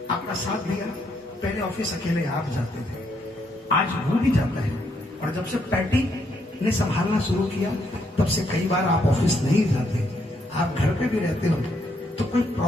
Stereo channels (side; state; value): both; normal; correlation 0.75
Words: आपका साथ दिया, पहले ऑफिस अकेले आप जाते थे, आज वो भी जाता है। और जब से पैटी ने संभालना शुरू किया तब से कई बार आप ऑफिस नहीं जाते, आप घर पे भी रहते हो तो कोई